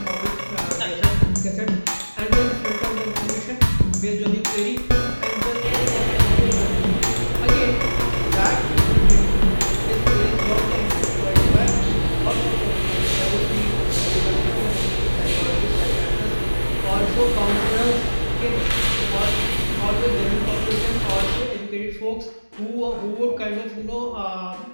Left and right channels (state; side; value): inverted; both; correlation -1.00